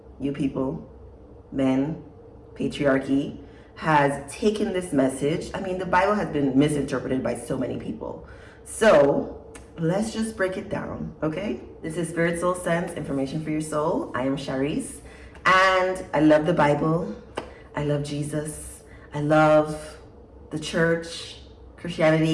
you people, men, patriarchy, has taken this message. I mean, the Bible has been misinterpreted by so many people. So let's just break it down, okay? This is Spirit, Soul, Sense, Information for Your Soul. I am Shareece, and I love the Bible. I love Jesus. I love the church,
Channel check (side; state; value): both; identical; correlation 1.00